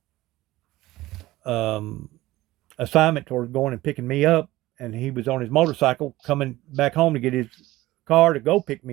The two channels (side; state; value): left; quieter; 17.4 dB